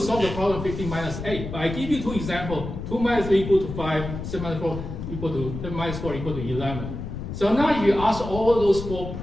the problem 15 minus 8, but I give you 2 examples. 2 minus 3 equal to 5, 7 minus 4 equal to 10 minus 4 equal to 11. So now if you ask all those 4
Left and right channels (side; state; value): left; noise; rumble, 7 dB below the sound